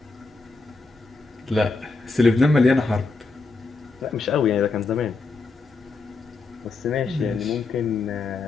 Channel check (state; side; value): quieter; right; 3.9 dB